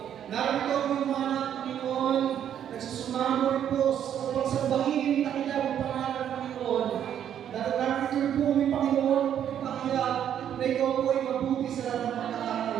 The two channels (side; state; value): left; quieter; 9.7 dB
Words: Narito ang mga anak, Panginoon, nagsusumamo rin po sa pagsambahinin na kailangan pangalan, Panginoon. Narito rin po kami, Panginoon, pagpapakiyag na ikaw po ay mabuti sa lahat ng